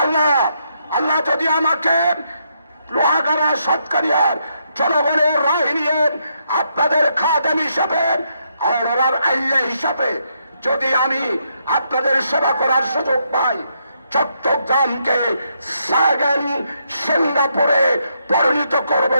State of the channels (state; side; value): inverted; both; correlation -0.77